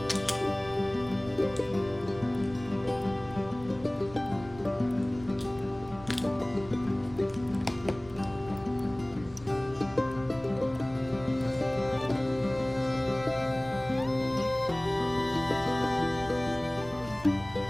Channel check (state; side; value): noise; right; rumble, 19 dB below the sound